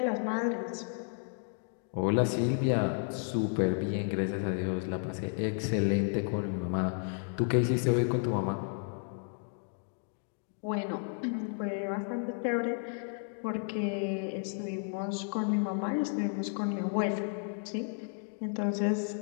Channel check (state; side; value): silent; right; 56 dB below the other